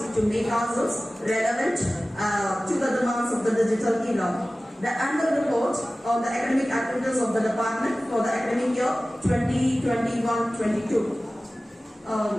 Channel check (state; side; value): normal; both; correlation 0.97